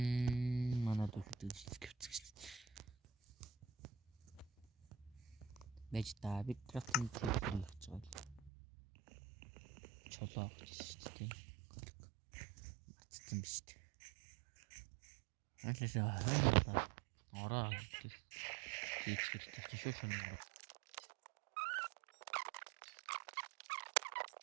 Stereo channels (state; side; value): drops out; left; at 8.5 s